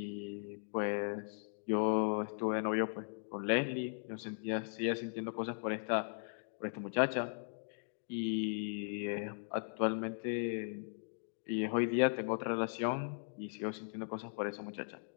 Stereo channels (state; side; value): silent; right; digital silence